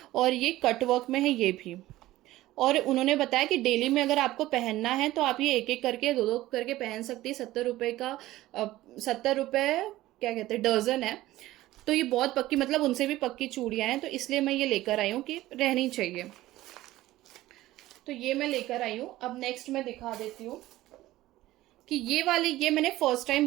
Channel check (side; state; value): left; quieter; 16.2 dB